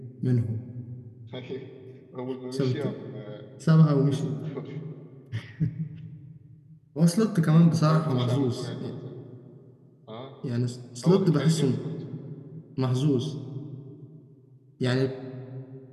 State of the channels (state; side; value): identical; both; correlation 1.00